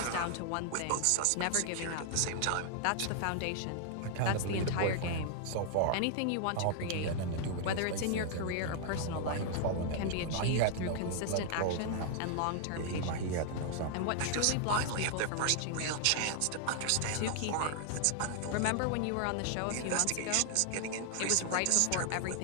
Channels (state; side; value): different; both; correlation 0.00